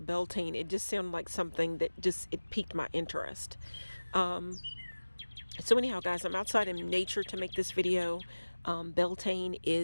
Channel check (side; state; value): both; inverted; correlation -1.00